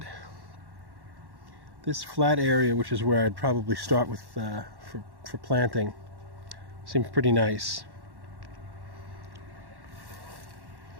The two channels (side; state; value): left; late; 1.1 ms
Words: This flat area, which is where I'd probably start with for planting, seems pretty nice.